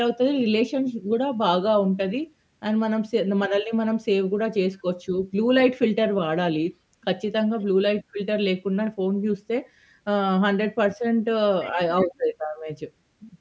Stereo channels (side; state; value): both; identical; correlation 1.00